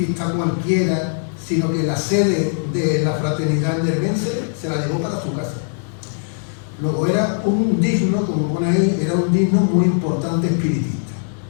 cualquiera, sino que la sede de la Fraternidad Nervense se la llevó para su casa. Luego era un digno, como pone ahí, era un digno muy importante espiritista.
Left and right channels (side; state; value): right; silent; digital silence